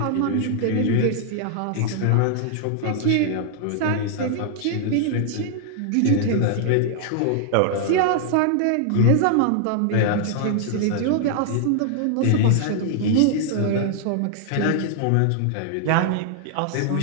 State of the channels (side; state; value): both; different; correlation -0.01